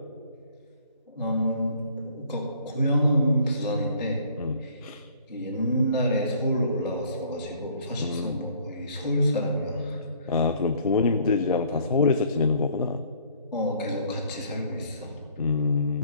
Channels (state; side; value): inverted; both; correlation -0.58